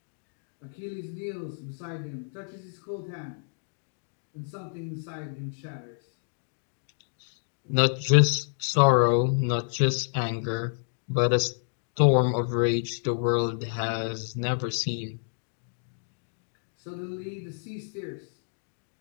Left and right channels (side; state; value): right; silent; digital silence